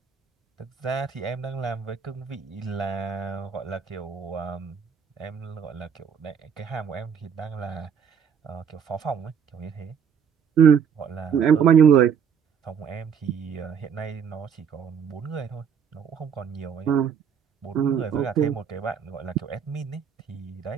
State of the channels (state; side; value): quieter; left; 7.5 dB